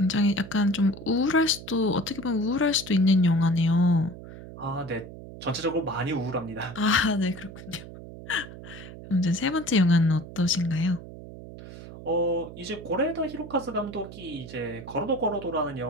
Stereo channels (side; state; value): right; noise; hum, 14 dB below the sound